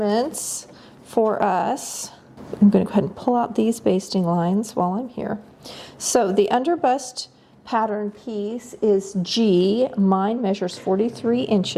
for us. I'm going to go ahead and pull out these basting lines while I'm here. So the underbust pattern piece is G. Mine measures 43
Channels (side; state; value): both; identical; correlation 1.00